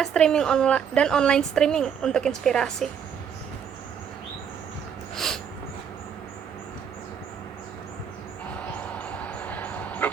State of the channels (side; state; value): left; quieter; 7.7 dB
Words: online streaming untuk inspirasi.